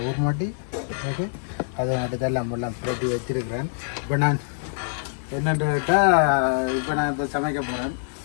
ஊர் மட்டி. ஓகே, அதை நட்டு எல்லாம் பிரட்டி வச்சிருக்கிறேன். இப்போ நான் என்னென்னு கேட்டால் இப்போ நான் இப்போ சமைக்க போகிறேன்.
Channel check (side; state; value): right; silent; digital silence